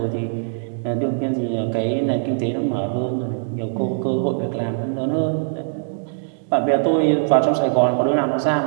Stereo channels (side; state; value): left; silent; digital silence